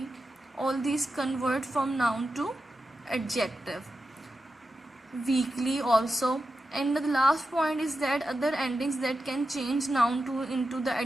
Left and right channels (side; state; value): both; normal; correlation 0.91